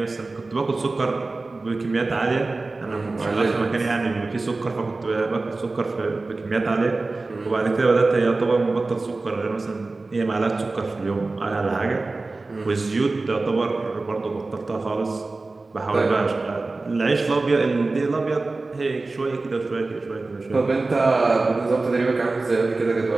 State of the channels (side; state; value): left; quieter; 3.4 dB